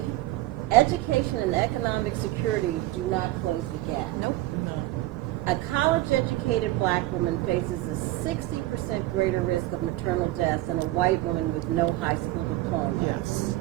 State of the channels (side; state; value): left; quieter; 17.3 dB